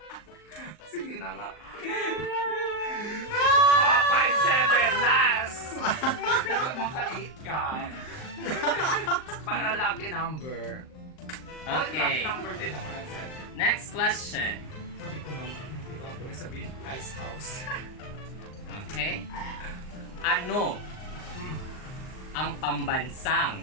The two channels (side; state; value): right; late; 39 ms